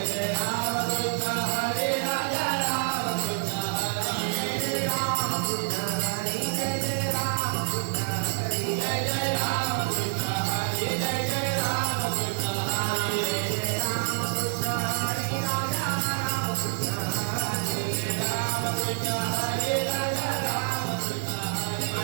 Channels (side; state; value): left; silent; digital silence